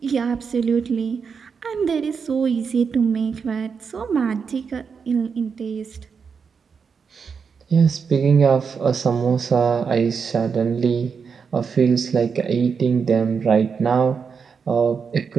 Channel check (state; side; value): quieter; left; 5.9 dB